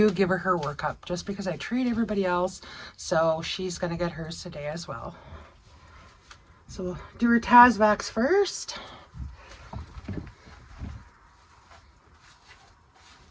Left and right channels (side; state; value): both; identical; correlation 1.00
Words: give her workup just because I treat everybody else, so she's gonna get hers today as well. So we'll do her Tasvax first.